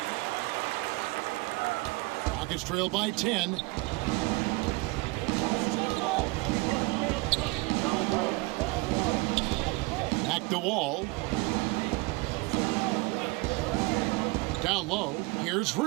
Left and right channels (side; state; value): left; quieter; 23.7 dB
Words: Rockets trail by 10. Back to Wall. Down low, here's